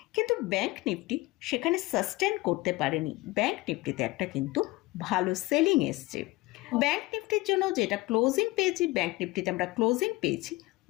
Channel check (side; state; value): right; quieter; 20.8 dB